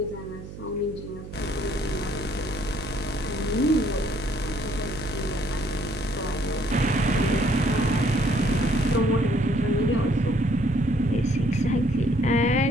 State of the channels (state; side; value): noise; right; hum, 13 dB below the sound